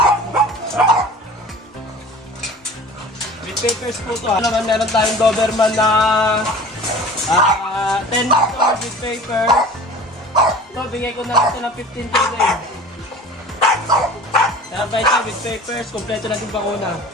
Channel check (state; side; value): normal; both; correlation 0.41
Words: With papers po ito. Naman meron tayong Doberman na 10 months old with papers. Ito bigay ko na lang ito ng 15K din. Kaya ba ito with papers, kompleto na yung bakuna.